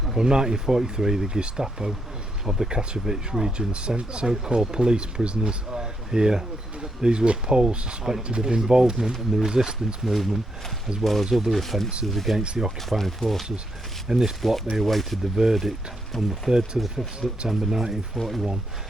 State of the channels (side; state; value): both; normal; correlation 0.80